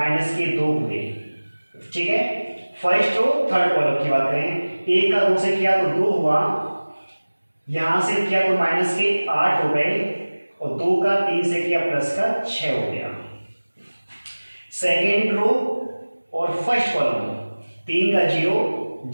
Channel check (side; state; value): both; inverted; correlation -1.00